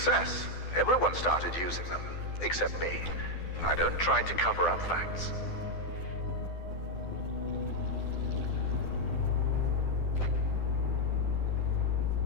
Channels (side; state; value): right; late; 12 ms